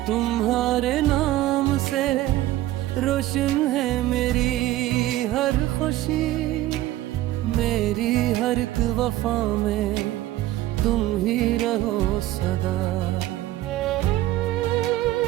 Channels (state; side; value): quieter; left; 15.3 dB